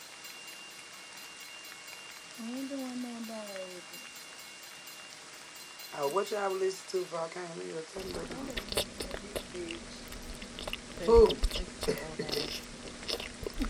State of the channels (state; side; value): identical; both; correlation 1.00